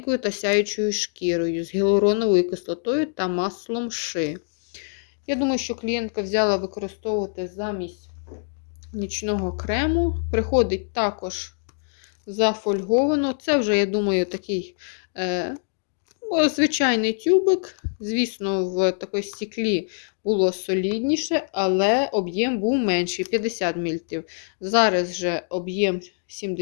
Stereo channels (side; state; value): right; silent; 62 dB below the other